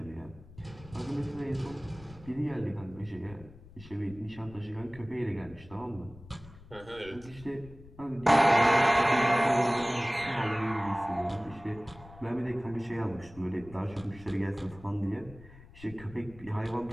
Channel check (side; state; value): left; noise; rumble, 19 dB below the sound